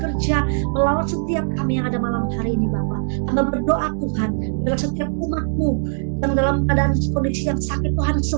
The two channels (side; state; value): left; silent; 65 dB below the other